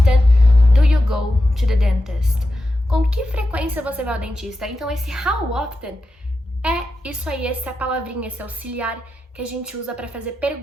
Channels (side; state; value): both; normal; correlation 0.90